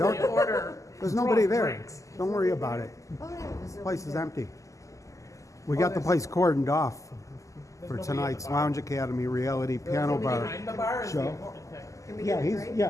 anonymously order There's nobody there. drinks. Don't worry about it. Oh, yeah, there's The no place is there. empty. We got the place cordoned off for nobody tonight's at the bar. Lounge Academy reality piano Nobody bar behind the bar is the show. important thing. Can we Yeah, get a he's drink?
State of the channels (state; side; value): late; right; 0.16 ms